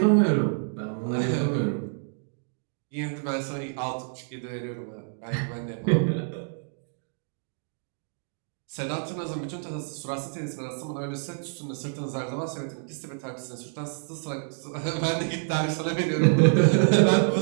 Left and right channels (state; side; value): silent; left; digital silence